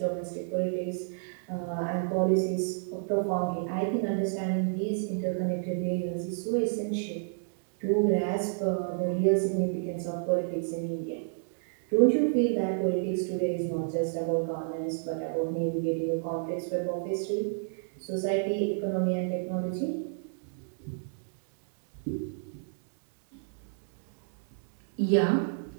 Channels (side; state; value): left; silent; digital silence